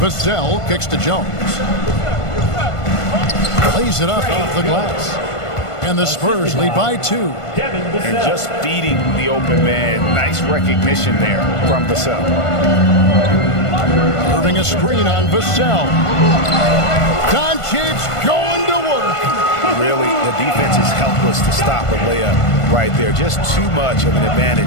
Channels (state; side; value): late; right; 1.5 ms